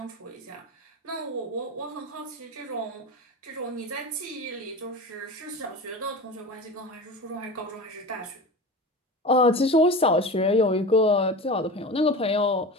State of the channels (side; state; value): both; normal; correlation 0.30